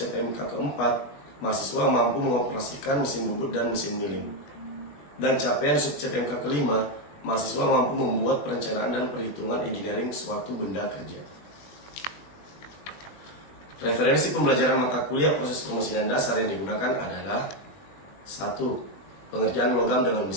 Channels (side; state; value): right; late; 21 ms